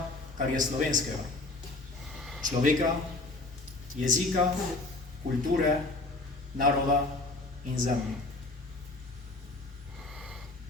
kar je slovenskega. Človeka, jezika, kulture, naroda in zemlje.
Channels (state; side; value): quieter; right; 3.1 dB